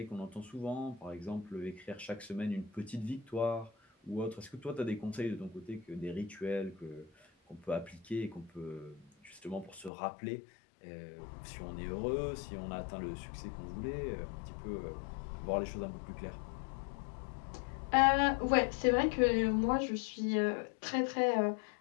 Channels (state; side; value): drops out; right; at 9.9 s